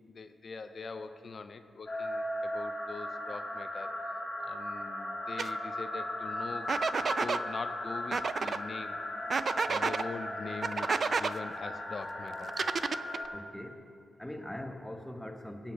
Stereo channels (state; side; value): normal; both; correlation 0.89